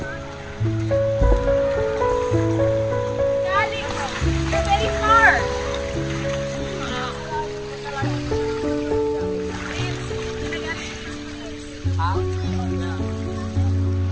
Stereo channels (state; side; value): identical; both; correlation 1.00